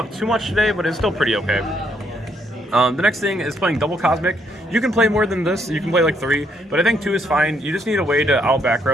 too much today, but it's still pretty okay. The next thing is playing double Cosmic. You can play more than this. You can play like 3, but I think 2 is fine. You just need a way to out back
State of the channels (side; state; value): both; normal; correlation 0.72